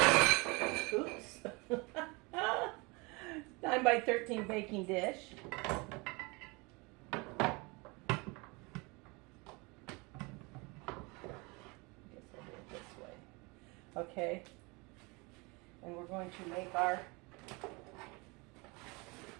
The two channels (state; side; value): quieter; left; 27.2 dB